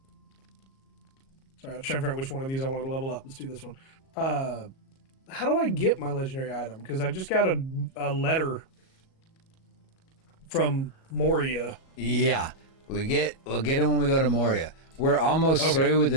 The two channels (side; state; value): right; late; 37 ms